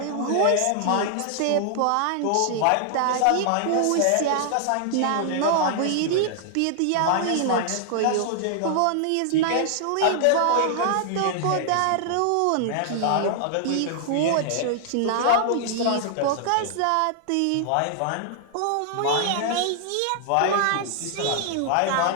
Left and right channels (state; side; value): different; both; correlation -0.01